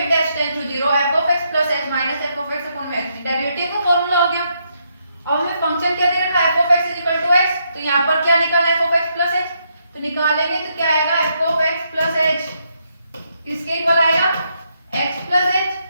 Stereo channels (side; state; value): both; inverted; correlation -0.77